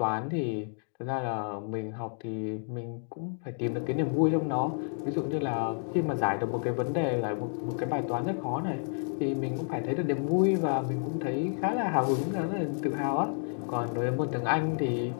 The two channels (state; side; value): silent; right; 58 dB below the other